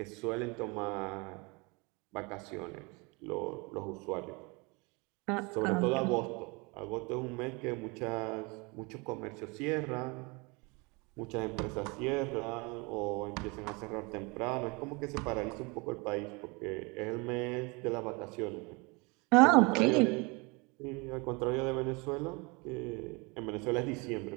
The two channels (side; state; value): left; quieter; 28.2 dB